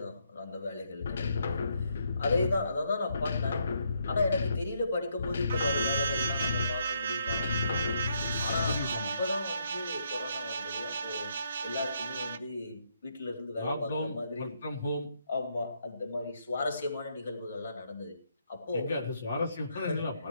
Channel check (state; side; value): inverted; both; correlation -0.75